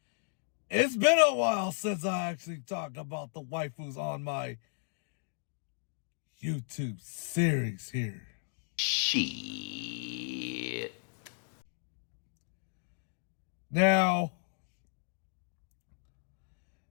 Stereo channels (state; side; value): silent; right; digital silence